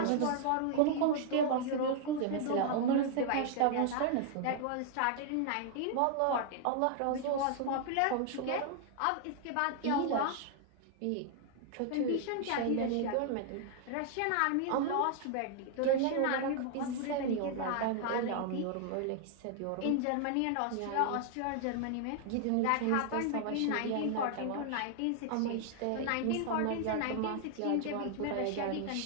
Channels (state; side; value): different; both; correlation 0.00